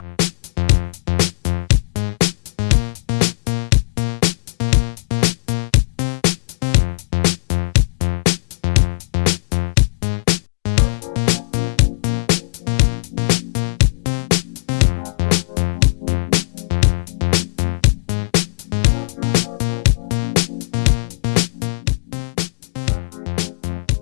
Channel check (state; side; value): silent; right; digital silence